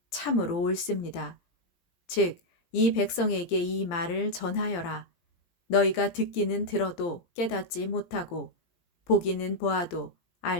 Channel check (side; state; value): right; late; 17 ms